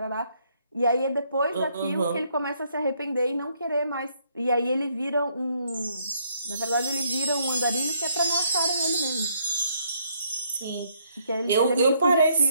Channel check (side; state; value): both; inverted; correlation -0.70